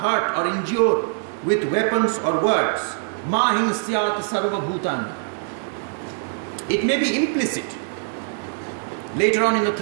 or injure with weapons or words. Ma hinsyat sarva bhutan. It may be implicit. Later on in the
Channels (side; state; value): left; silent; 63 dB below the other